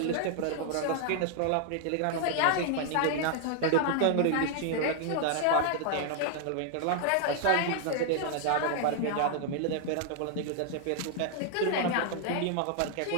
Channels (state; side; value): different; both; correlation 0.00